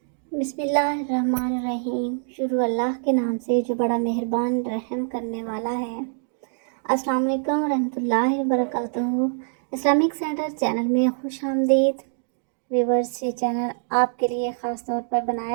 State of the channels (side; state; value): left; silent; 62 dB below the other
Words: بسم اللہ الرحمن الرحیم۔ شروع اللہ کے نام سے جو بڑا مہربان رحم کرنے والا ہے۔ السلام علیکم ورحمۃ اللہ وبرکاتہ۔ اسلامک سینٹر چینل میں خوش آمدید ویورز۔ یہ چینل آپ کے لیے خاص طور پر